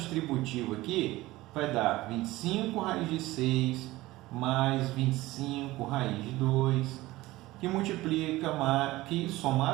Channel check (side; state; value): left; quieter; 18.4 dB